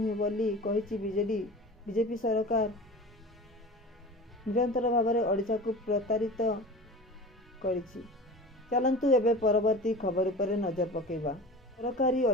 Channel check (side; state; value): both; normal; correlation 0.35